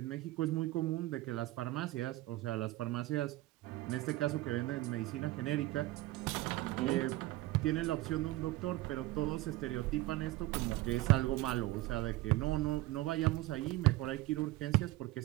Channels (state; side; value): quieter; left; 18.2 dB